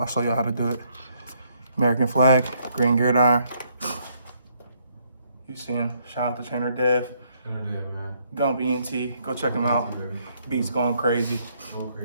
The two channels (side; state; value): both; inverted; correlation -0.71